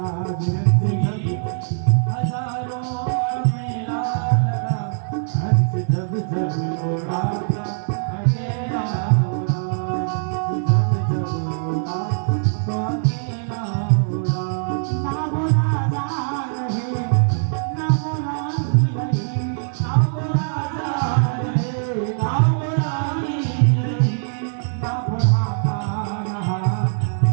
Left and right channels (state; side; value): silent; left; digital silence